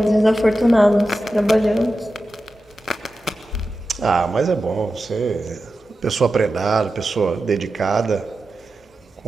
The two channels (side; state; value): both; normal; correlation 0.92